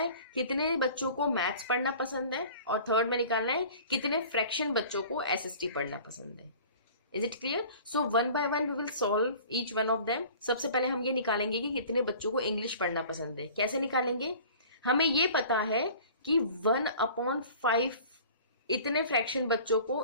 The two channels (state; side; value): inverted; both; correlation -0.45